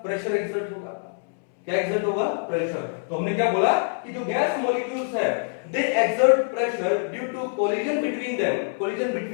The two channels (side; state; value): right; silent; 62 dB below the other